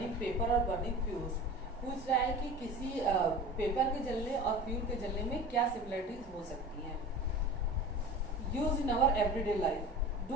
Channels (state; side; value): normal; both; correlation 0.36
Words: paper और बर्निंग फ्यूल्स। पूछ रहा है कि किसी पेपर के जलने और फ्यूल के जलने में क्या सिमिलरिटीज हो सकती हैं। Use in our everyday life,